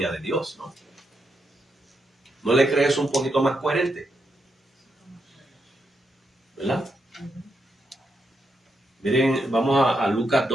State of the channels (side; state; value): both; normal; correlation 0.82